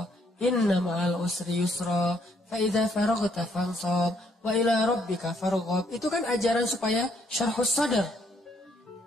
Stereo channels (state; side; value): normal; both; correlation 0.70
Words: inna ma'al usri yusra, fa idza faraghta fansab wa ila rabbika farghab. Itu kan ajaran supaya syarhus sadar.